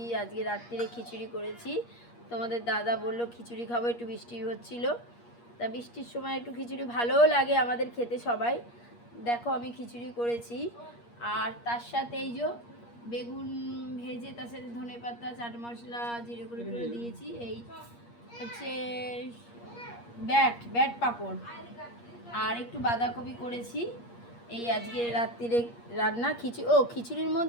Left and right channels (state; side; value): late; right; 8.5 ms